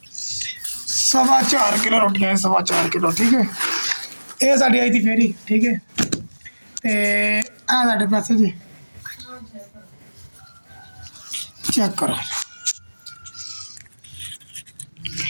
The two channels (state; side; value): inverted; both; correlation -1.00